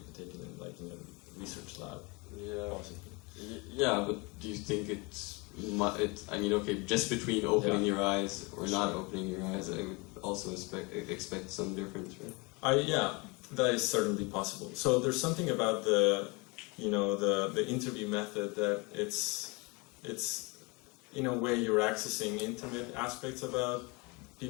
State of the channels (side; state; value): right; quieter; 28.0 dB